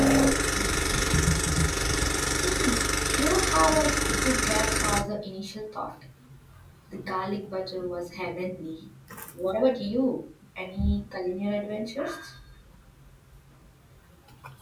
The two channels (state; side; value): identical; both; correlation 1.00